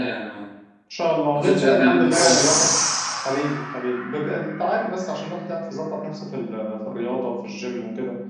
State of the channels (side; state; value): both; identical; correlation 1.00